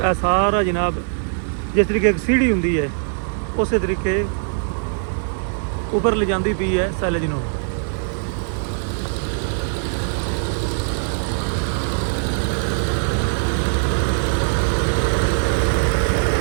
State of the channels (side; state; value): left; silent; digital silence